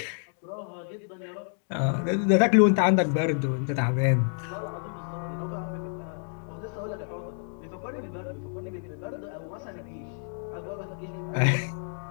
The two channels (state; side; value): silent; right; 59 dB below the other